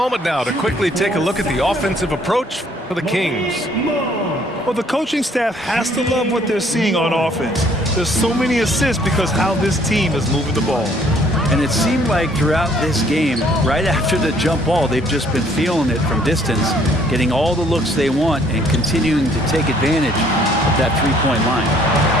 now to quickly take a look at the offensive approach for the Kings. Well, the coaching staff has to love what they're seeing on offense. There's so many assists because how this team is moving the ball. And it seemed like throughout this game, right after the jump ball, they've just been feeling it from distance, getting all the looks they want and continuing to take advantage of that three-point line.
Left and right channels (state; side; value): normal; both; correlation 0.61